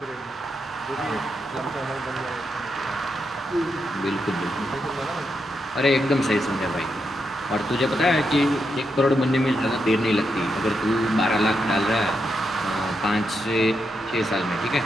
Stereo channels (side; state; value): both; normal; correlation 0.83